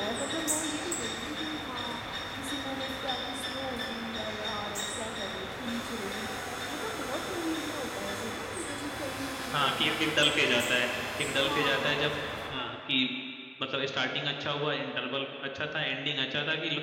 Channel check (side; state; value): both; identical; correlation 1.00